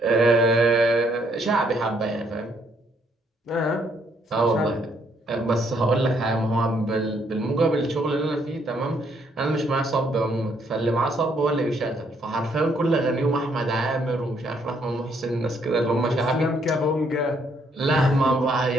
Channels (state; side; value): normal; both; correlation 0.70